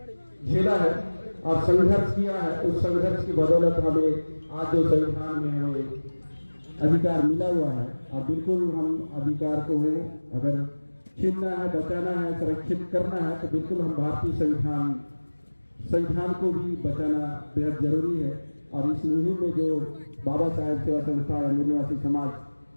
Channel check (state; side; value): inverted; both; correlation -1.00